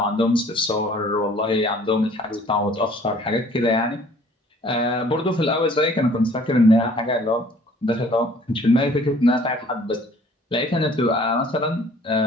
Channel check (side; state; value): both; normal; correlation 0.54